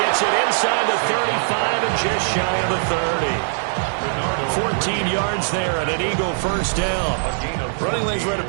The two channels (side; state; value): left; silent; digital silence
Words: gets it inside the 35 and just shy of the 30. 14 yards there and an Eagle first down. Running lanes were at a